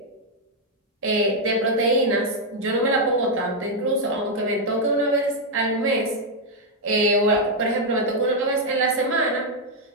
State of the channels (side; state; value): both; normal; correlation -0.01